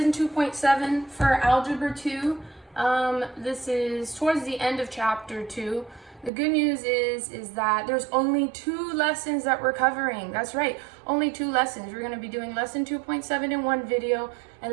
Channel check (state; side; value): drops out; left; at 6.3 s